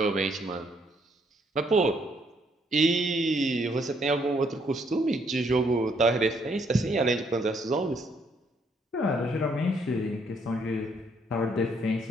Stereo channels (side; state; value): both; normal; correlation 0.70